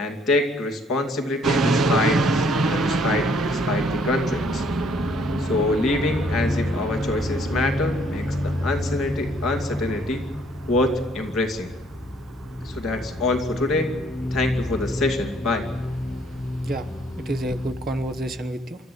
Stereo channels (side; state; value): both; normal; correlation 0.63